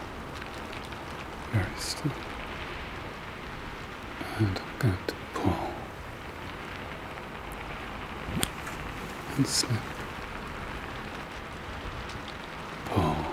very still. And I'm going to pull and snip. Pull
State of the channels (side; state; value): both; identical; correlation 1.00